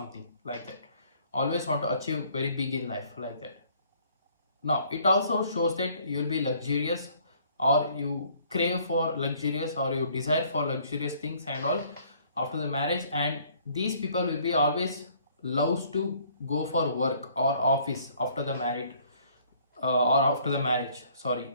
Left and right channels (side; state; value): both; inverted; correlation -0.60